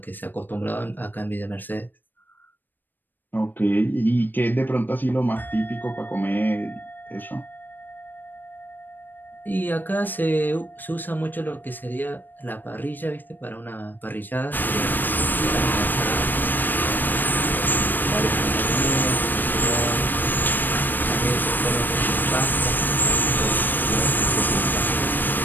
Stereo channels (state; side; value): late; right; 0.091 ms